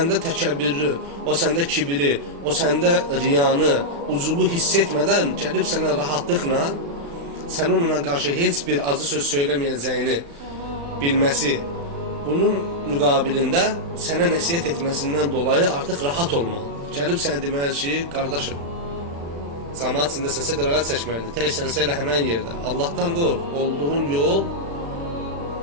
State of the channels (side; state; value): left; late; 35 ms